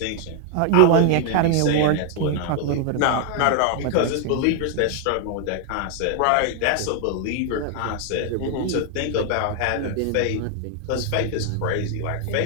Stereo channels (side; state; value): both; different; correlation 0.00